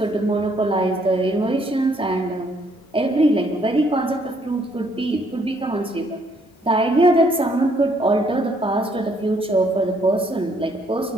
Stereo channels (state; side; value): normal; both; correlation 0.67